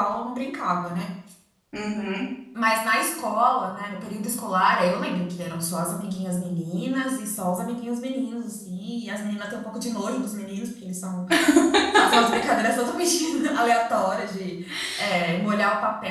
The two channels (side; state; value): both; identical; correlation 1.00